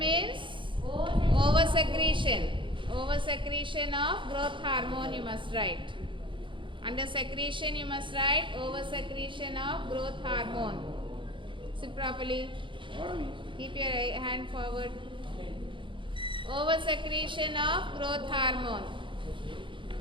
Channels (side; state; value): left; late; 0.24 ms